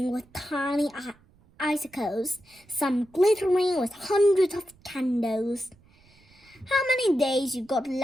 with tiny icicles, some glittering with hundreds of candles. How many days you got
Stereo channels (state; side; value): noise; right; rumble, 30 dB below the sound